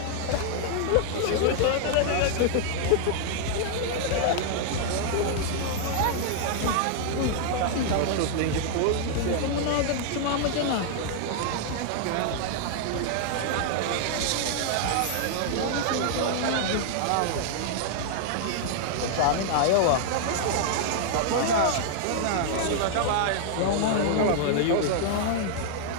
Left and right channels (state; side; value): different; both; correlation -0.01